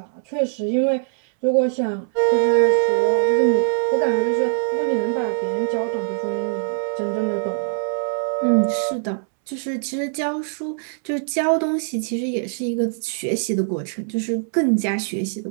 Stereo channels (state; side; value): silent; left; 64 dB below the other